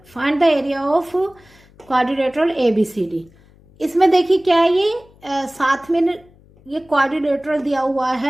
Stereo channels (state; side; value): noise; left; hum, 28 dB below the sound